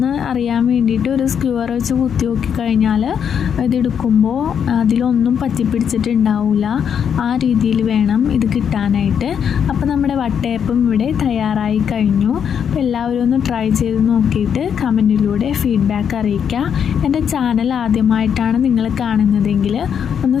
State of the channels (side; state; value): right; quieter; 7.9 dB